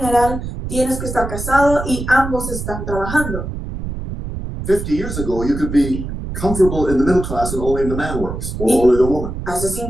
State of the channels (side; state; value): right; noise; rumble, 6 dB below the sound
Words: tienes que estar casado y ambos están trabajando. 50 years ago, you could be comfortable in the middle class and only the man works, or only the woman. Hace